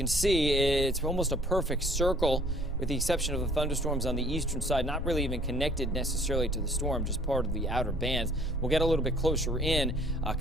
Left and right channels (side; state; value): both; normal; correlation 0.56